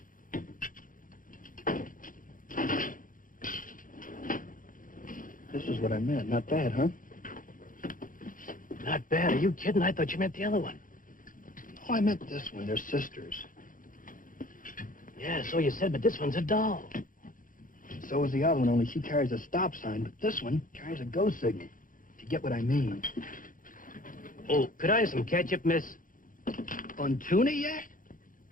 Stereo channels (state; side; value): late; right; 0.39 ms